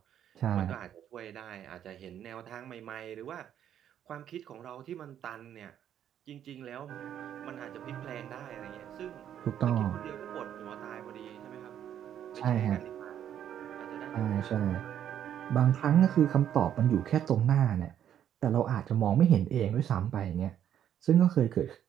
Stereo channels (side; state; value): left; quieter; 10.0 dB